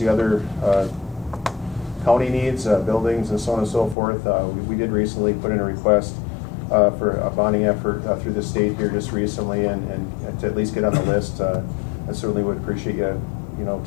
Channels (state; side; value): drops out; right; at 4.0 s